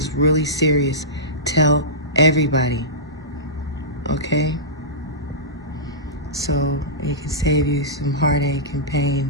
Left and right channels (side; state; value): both; normal; correlation -0.18